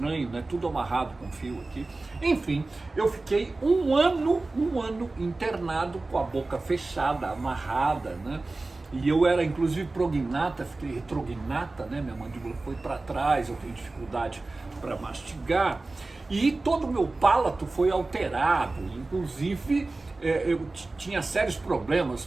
né? Tudo amarrado com fio aqui. Enfim, eu fiquei um ano internado com a boca fechada, amarrada, né? E eu era inclusive prognata, fiquei retrognata, né? Minha mandíbula foi para trás, eu tenho dificuldade para mastigar. E todo o meu palato foi alterado, inclusive eu tinha sérios problemas.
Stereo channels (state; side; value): quieter; left; 3.3 dB